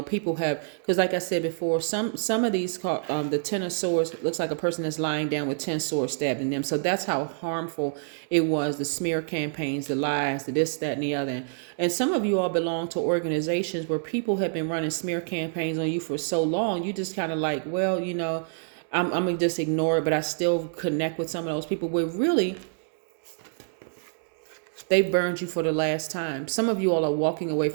people have, because like I said before, some of these the 10 of swords looks like a person that's lying down with 10 swords stabbed in them. So that's how harmful it was. The smear campaigns, the lies, the this, that, and the other. And some of you all belong to organizations where people have been running smear campaigns on you for so long. You just kind of like, well, you know, I'm gonna just ignore it, but I still connect with some of those people where really they burned you for the last time. Some of you all are walking away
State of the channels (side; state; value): left; silent; digital silence